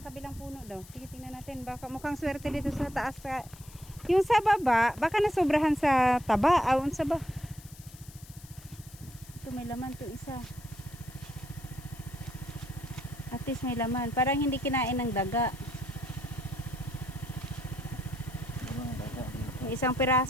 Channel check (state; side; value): noise; left; hiss, 20 dB below the sound